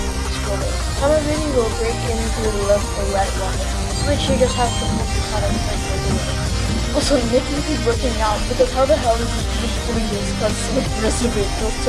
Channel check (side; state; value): both; identical; correlation 1.00